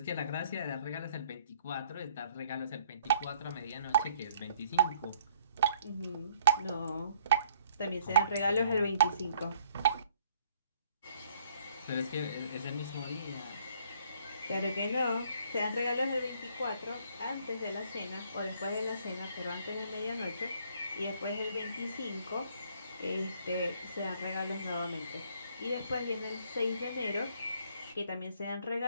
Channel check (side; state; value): both; inverted; correlation -0.62